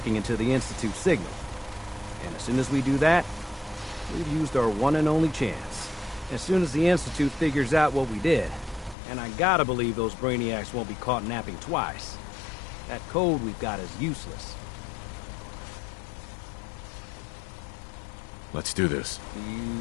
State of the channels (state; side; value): drops out; right; at 9.0 s